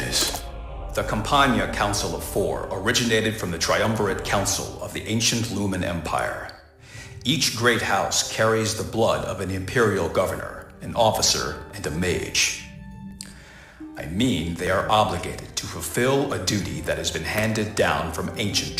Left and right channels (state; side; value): identical; both; correlation 1.00